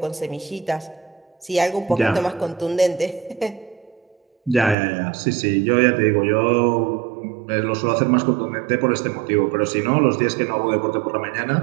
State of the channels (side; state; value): left; drops out; at 4.8 s